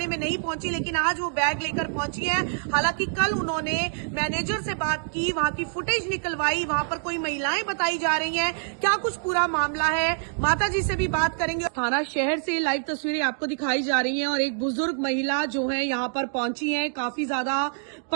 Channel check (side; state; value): left; silent; digital silence